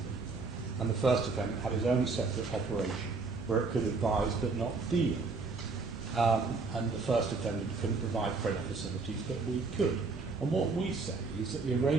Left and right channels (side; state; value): left; quieter; 4.2 dB